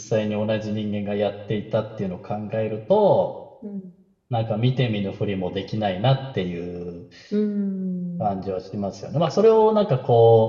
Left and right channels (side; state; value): both; identical; correlation 1.00